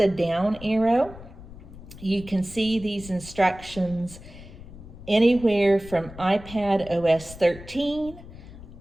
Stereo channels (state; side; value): noise; left; rumble, 16 dB below the sound